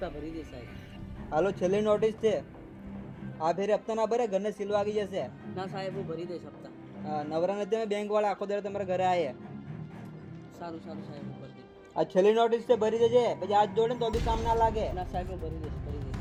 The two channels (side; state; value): both; identical; correlation 1.00